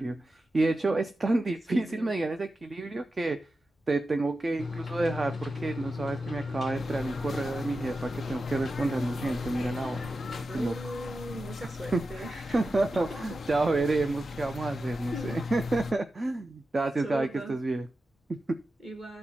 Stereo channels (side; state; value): both; normal; correlation 0.91